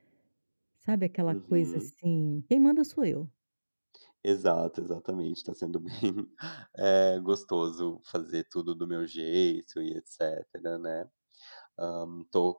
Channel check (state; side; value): inverted; both; correlation -1.00